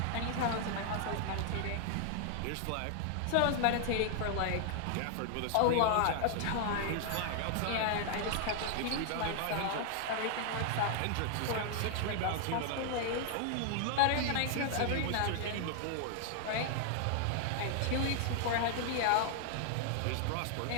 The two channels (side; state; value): both; different; correlation 0.00